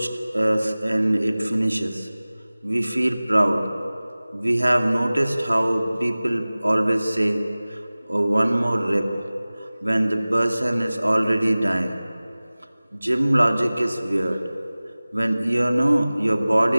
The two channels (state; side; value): inverted; both; correlation -0.98